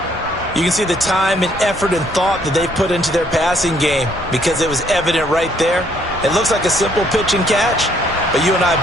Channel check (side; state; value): both; normal; correlation 0.67